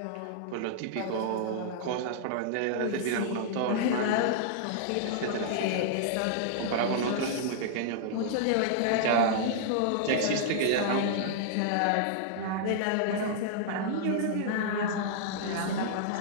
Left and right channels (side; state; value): both; different; correlation -0.01